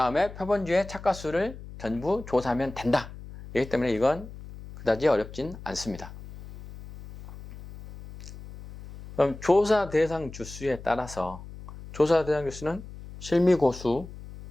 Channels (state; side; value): noise; left; hum, 14 dB below the sound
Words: 표본주의 착가수를 전부 조사하면 된다. 그렇기 때문에 이건 그다지 어렵진 않습니다. 그럼 조사 대상 주수에 따라서 조사 대상 주수는 실미고수,